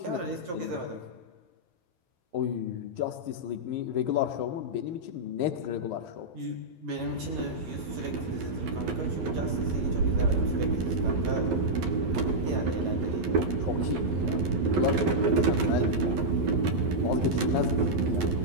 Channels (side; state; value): left; late; 12 ms